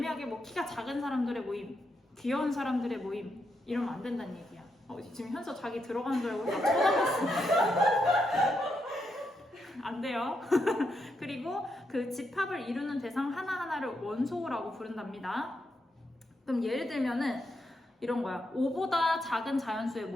뭐 키가 작은 사람들의 모임, 귀여운 사람들의 모임 이러면 안 된다는 얘기야. 지금 현서 자기 들어가는 줄 알고 막 쳐다봤어. 안 돼요. 그리고 그 집합을 이루는 대상 하나하나를 원소라고 부른답니다. 그럼 예를 들면은 이런 거야. 5보다 작은 자연수의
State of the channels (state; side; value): normal; both; correlation 0.81